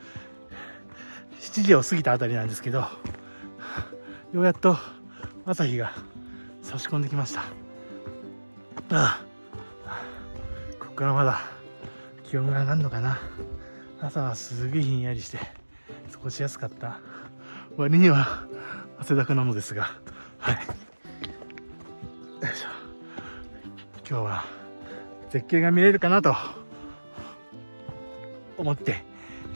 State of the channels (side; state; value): both; inverted; correlation -1.00